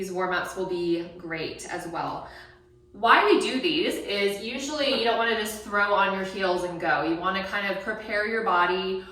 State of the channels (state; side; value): identical; both; correlation 1.00